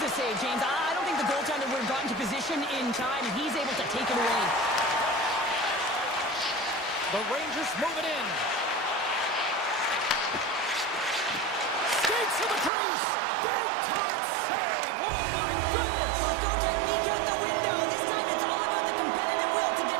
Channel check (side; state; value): left; drops out; at 12.7 s